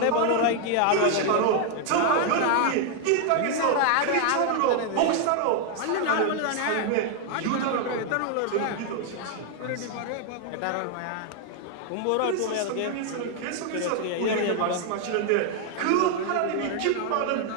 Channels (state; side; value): different; both; correlation 0.00